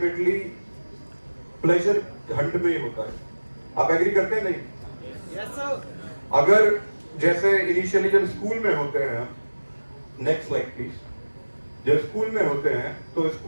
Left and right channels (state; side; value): inverted; both; correlation -1.00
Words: प्लेजर हंट में ही होता है। आप एग्री करते हैं? नहीं? Yes sir. अगर जैसे इनिशियली जब स्कूल में होते हैं, नेक्स्ट स्लाइड प्लीज। जब स्कूल में होते हैं तो